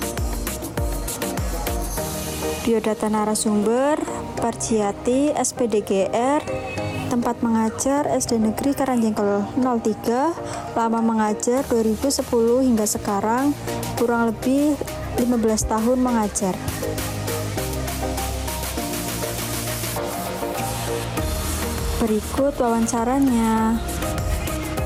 Biodata narasumber Parjiati SPDGR, tempat mengajar SD Negeri Karangjengkel 03, lama mengajar 2010 hingga sekarang, kurang lebih 15 tahun mengajar. Berikut wawancaranya.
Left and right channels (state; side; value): identical; both; correlation 1.00